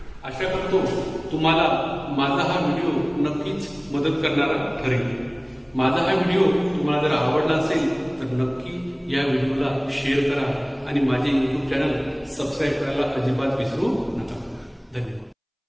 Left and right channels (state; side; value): identical; both; correlation 1.00